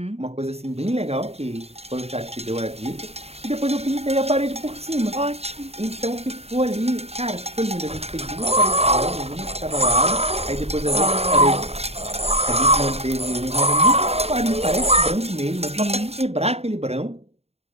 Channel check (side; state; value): left; late; 0.30 ms